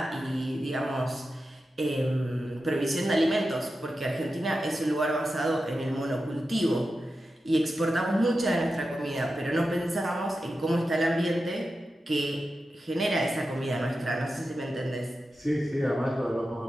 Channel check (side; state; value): both; normal; correlation 0.91